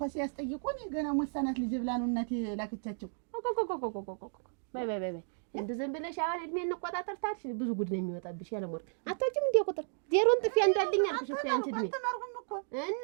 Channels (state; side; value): silent; left; digital silence